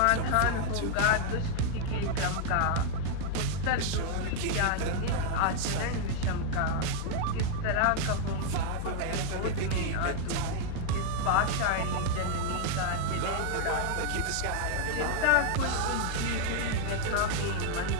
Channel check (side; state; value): both; different; correlation 0.00